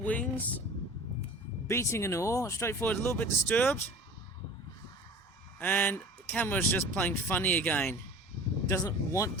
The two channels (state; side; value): normal; both; correlation 0.41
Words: beating and all. Straightforward, a little bit disturbed. And the camera's just playing funny again. Doesn't want